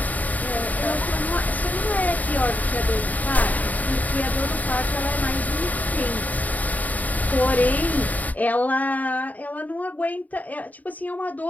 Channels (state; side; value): late; right; 0.076 ms